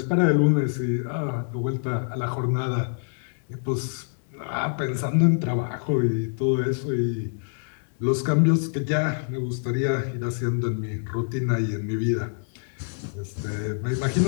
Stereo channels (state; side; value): silent; right; digital silence